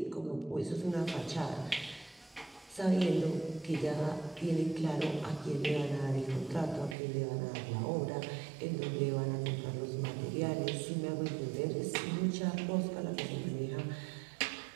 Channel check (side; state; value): left; drops out; at 7.0 s